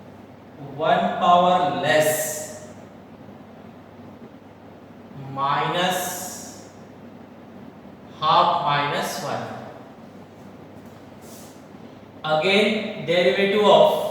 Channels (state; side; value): identical; both; correlation 1.00